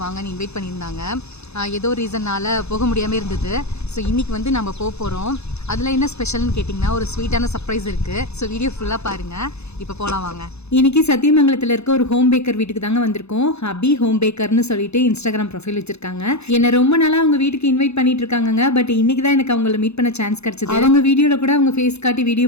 வாங்கன்னு இன்வைட் பண்ணியிருந்தாங்க. ஏதோ ரீசன்னால் போக முடியாமல் இருந்தது. ஸோ இன்றைக்கி வந்து நம்ம போகிறோம். அதில் என்ன ஸ்பெஷல்னு கேட்டிங்கன்னா, ஒரு ஸ்வீட்டான சர்ப்ரைஸ் இருக்குது. ஸோ வீடியோ ஃபுல்லாக பாருங்கள். இப்போ போகலாம் வாங்க. இன்னைக்கு சத்தியமங்கலத்தில் இருக்க ஒரு ஹோம் பேக்கர் வீட்டுக்கு தாங்க வந்திருக்கோம். அபி ஹோம் பேக்கர்னு சொல்லிட்டு இன்ஸ்டாகிராம் ப்ரொஃபைல் வச்சிருக்காங்க. என்னை ரொம்ப நாளாக அவங்க வீட்டுக்கு இன்வைட் பண்ணிட்டு இருக்காங்க. பட் இன்னைக்கு தான் எனக்கு அவங்கள மீட் பண்ண சான்ஸ் கிடைச்சது. அவங்க வீடியோவில் கூட அவங்க ஃபேஸ் காட்டி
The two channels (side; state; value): right; late; 0.80 ms